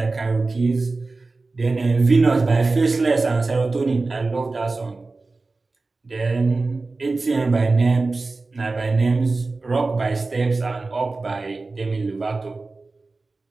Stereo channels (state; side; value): quieter; left; 3.6 dB